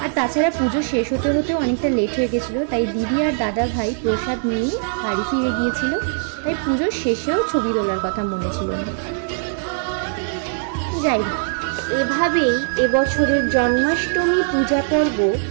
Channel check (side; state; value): left; silent; digital silence